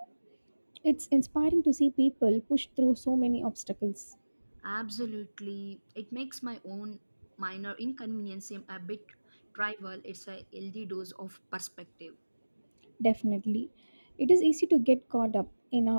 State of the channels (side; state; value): both; inverted; correlation -1.00